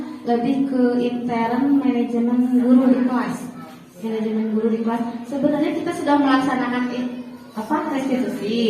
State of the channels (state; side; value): identical; both; correlation 1.00